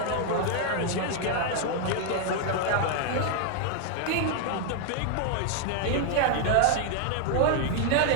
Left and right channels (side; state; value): both; different; correlation 0.00